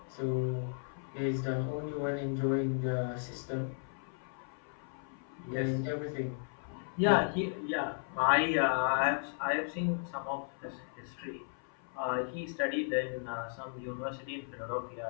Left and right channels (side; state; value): right; silent; 54 dB below the other